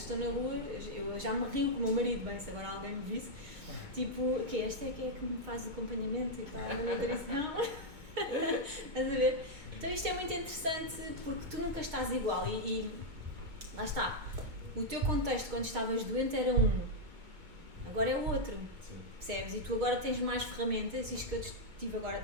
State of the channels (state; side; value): late; left; 2.2 ms